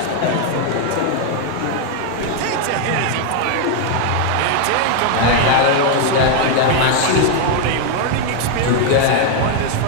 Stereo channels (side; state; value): both; different; correlation 0.01